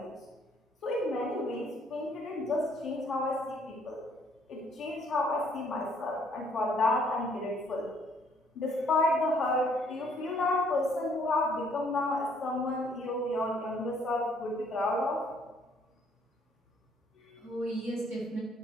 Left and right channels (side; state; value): both; normal; correlation 0.64